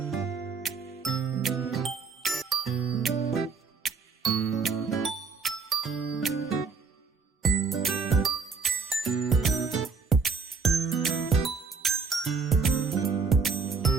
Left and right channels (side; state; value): left; quieter; 5.0 dB